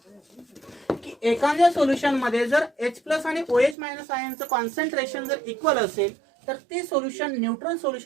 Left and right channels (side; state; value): left; drops out; at 3.8 s